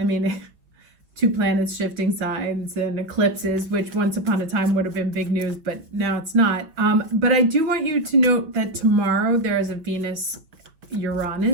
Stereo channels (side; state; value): left; late; 6.2 ms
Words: mean, two planets shifting signs and eclipses, which once upon a time would have been big news, but now it's not. But I do want you to note that tomorrow there is a